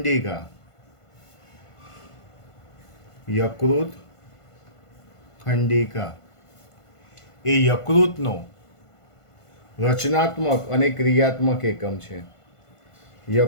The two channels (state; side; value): late; right; 1.5 ms